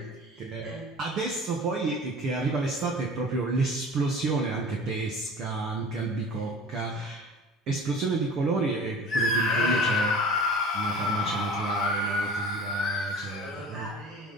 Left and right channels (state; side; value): normal; both; correlation 0.41